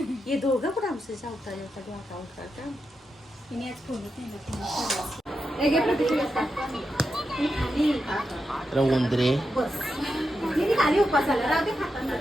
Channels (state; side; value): normal; both; correlation 0.87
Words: हे दोघं पण आमचं जेवता जेवता डोका उठा उंदरे खाली उपासाला राहते